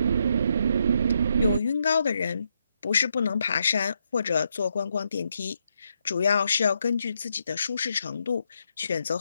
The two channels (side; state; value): both; inverted; correlation -0.79